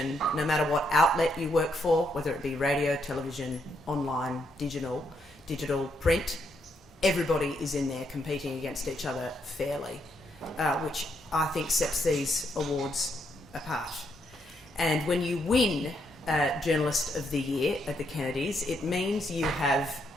no matter what outlet you work for, whether it be radio, television, online, digital, print, everybody is in there competing against each other fairly, which I think sets these awards apart. And when you win Journalist of the Year at the Kennedys, it means you have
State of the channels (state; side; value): normal; both; correlation 0.77